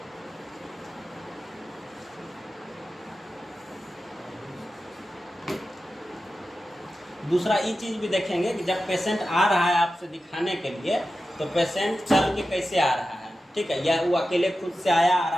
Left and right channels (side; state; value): both; normal; correlation 0.93